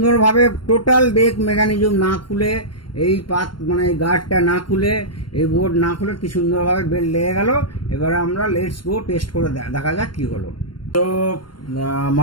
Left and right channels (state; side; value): late; right; 0.72 ms